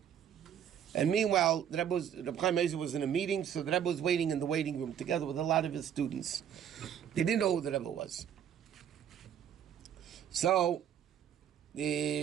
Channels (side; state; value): left; quieter; 9.2 dB